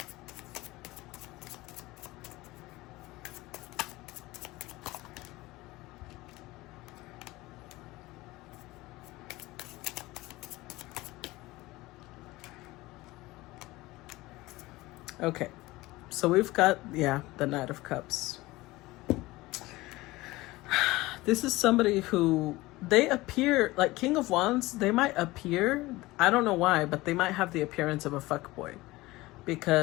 Okay, so we've got, yeah, the Knight of Cups. This is somebody who, they appear, like King of Wands, they might appear, I don't know why, but they might have the appearance of a fuckboy.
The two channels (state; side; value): quieter; right; 19.7 dB